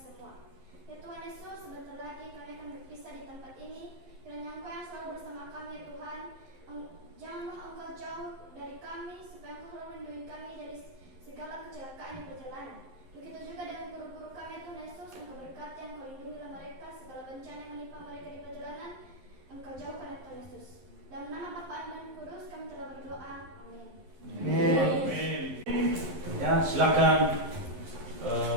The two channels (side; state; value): left; late; 11 ms